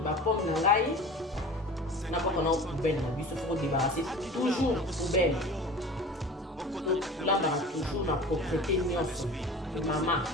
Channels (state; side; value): normal; both; correlation 0.38